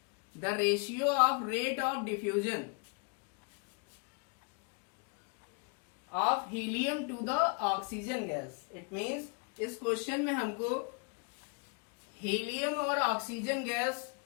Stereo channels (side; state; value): right; quieter; 34.0 dB